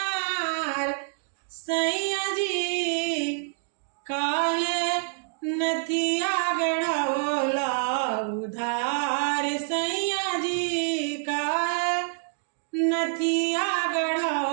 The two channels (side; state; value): left; silent; digital silence